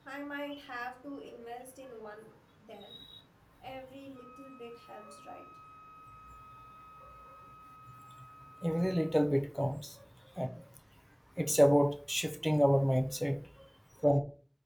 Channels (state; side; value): identical; both; correlation 1.00